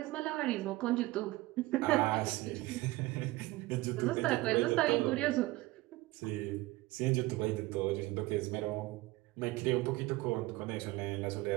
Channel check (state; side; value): quieter; left; 19.5 dB